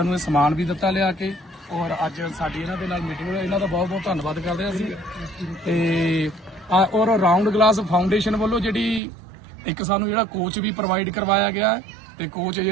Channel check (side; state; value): left; drops out; at 9.0 s